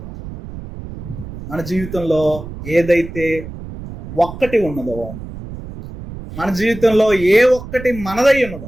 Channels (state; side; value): noise; right; rumble, 12 dB below the sound